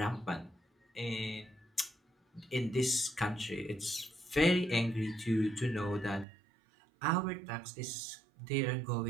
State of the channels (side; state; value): left; drops out; at 6.2 s